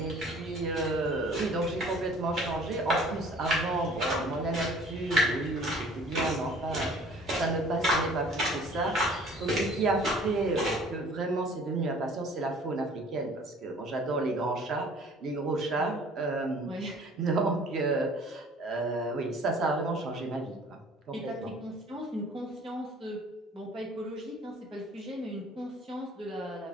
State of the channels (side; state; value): both; normal; correlation 0.51